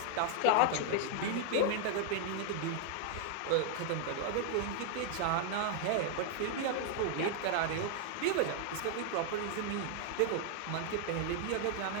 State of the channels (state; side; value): different; both; correlation 0.00